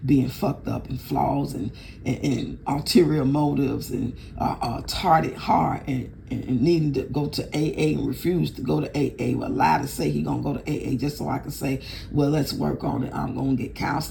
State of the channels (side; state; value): both; identical; correlation 1.00